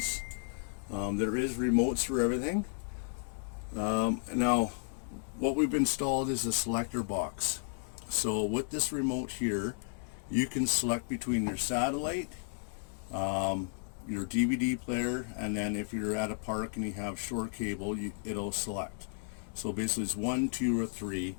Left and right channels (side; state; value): right; silent; 55 dB below the other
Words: There is remotes for everything. Now, what we've installed is a selector box. So with this remote here, you can select between your satellite, your DVD player, and then if you're at a park and you have short cable, it'll select. So basically it's 1, 2, or 3,